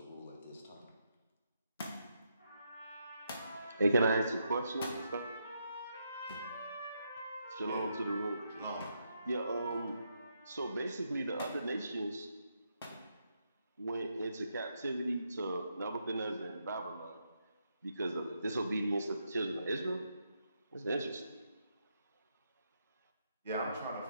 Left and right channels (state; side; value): inverted; both; correlation -0.80